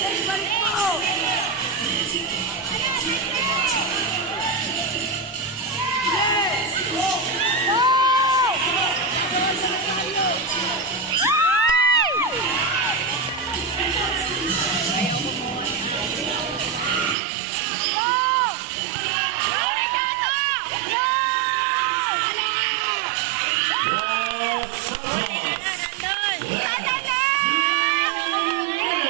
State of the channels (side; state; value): left; drops out; at 17.2 s